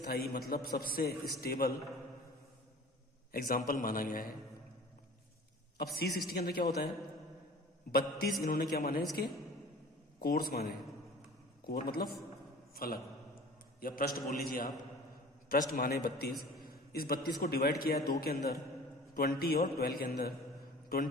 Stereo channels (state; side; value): normal; both; correlation 0.43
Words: मतलब सबसे स्टेबल एग्जाम्पल माना गया है। अब C60 के अंदर क्या होता है? 32 इन्होंने क्या माने? इसके कोर्स माने। कोर मतलब फलक या पृष्ठ बोल लीजिए आप, पृष्ठ माने 32। इस 32 को डिवाइड किया है 2 के अंदर, 20 और 12 के अंदर।